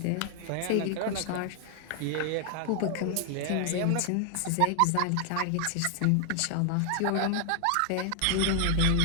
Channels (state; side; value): different; both; correlation 0.00